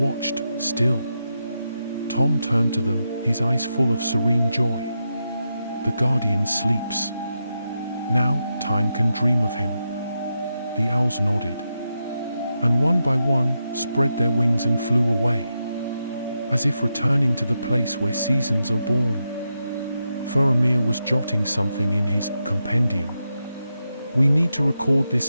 still. Tom turned to them, his eyes full of serene joy. The guardian sleeps. Now, time can dream of him. The owls nodded. And one by one, spread their wings and flew away. As if returning to the place where seasons are born. Faramir was jotting something in his compendium. We need to record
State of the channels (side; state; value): both; inverted; correlation -0.86